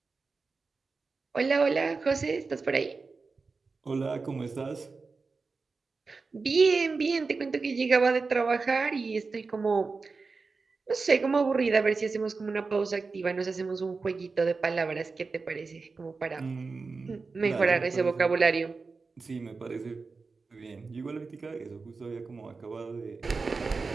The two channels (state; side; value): quieter; left; 4.3 dB